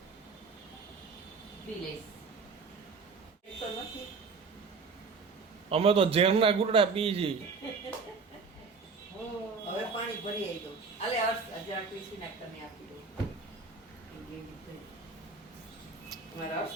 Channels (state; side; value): quieter; left; 4.7 dB